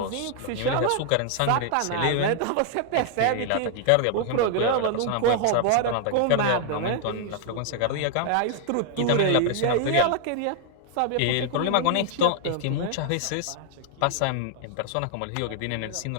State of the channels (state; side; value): different; both; correlation 0.00